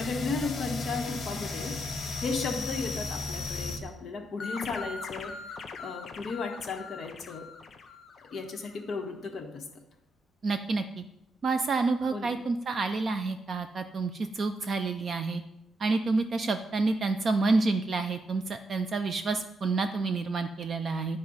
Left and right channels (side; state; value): both; normal; correlation 0.81